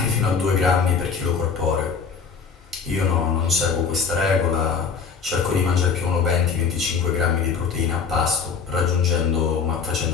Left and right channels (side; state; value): right; quieter; 5.8 dB